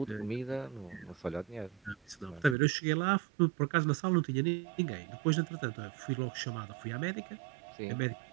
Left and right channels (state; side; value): drops out; left; at 2.6 s